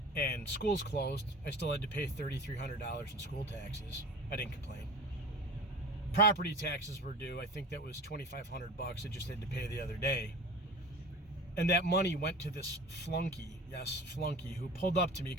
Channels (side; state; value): both; normal; correlation 0.37